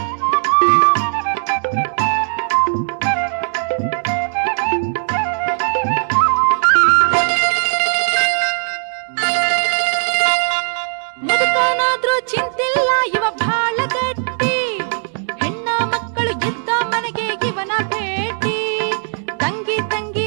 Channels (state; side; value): silent; left; digital silence